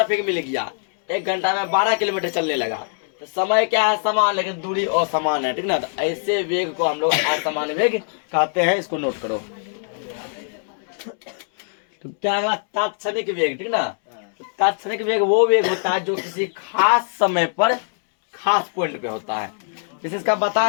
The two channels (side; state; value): right; silent; 64 dB below the other